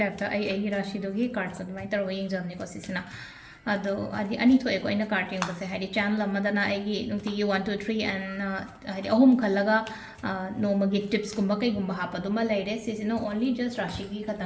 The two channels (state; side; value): identical; both; correlation 1.00